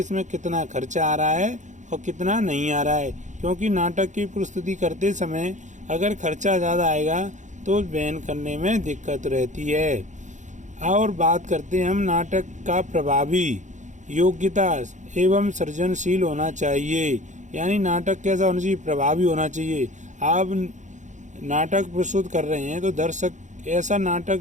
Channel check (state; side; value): late; left; 0.35 ms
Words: कितना खर्चा आ रहा है और कितना नहीं आ रहा है, क्योंकि नाटक की प्रस्तुति करते समय अगर खर्चा ज़्यादा आएगा तो बयान करने में दिक्कत रहती है। और बात करते हैं हम नाटक का प्रभावी, योग्यता एवं सृजनशील होना चाहिए। यानी नाटक कैसा होना चाहिए, प्रभावी होना चाहिए। आप नाटक प्रस्तुत कर रहे हैं तो दर्शक ऐसा नाटक